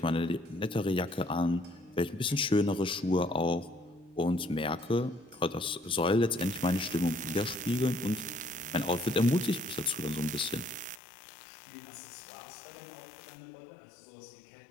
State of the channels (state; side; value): drops out; right; at 11.0 s